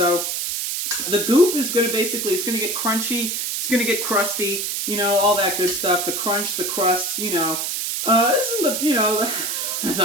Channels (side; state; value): right; noise; hiss, 2 dB below the sound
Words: the goop is going to basically, it's going to get crunchy. It's going to get crusty. You know, all that good stuff. The crunch, the crust, you know. This isn't the, you know,